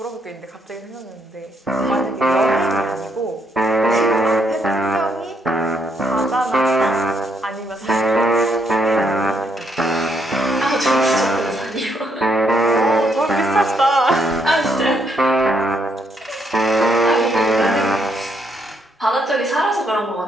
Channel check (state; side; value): normal; both; correlation 0.74